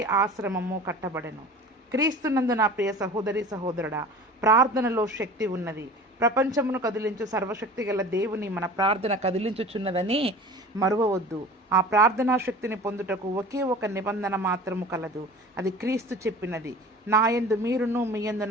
ఆశ్రమము కట్టబడెను. క్రీస్తునందు నా ప్రియ సహోదరి సహోదరుడా, ప్రార్థనలో శక్తి ఉన్నది. ప్రపంచమును కదిలించు సర్వశక్తి గల దేవుని మన ప్రార్థన కదిలించుచున్నదని మరువవద్దు. ఆ ప్రార్థనా శక్తిని పొందుటకు ఒకే ఒక నిబంధన మాత్రము కలదు. అది క్రీస్తు చెప్పినది, నా యందు మీరును మీ యందు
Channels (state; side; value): normal; both; correlation 0.39